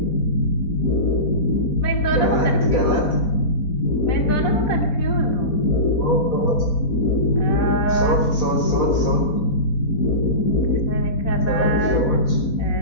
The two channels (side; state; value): right; late; 4.1 ms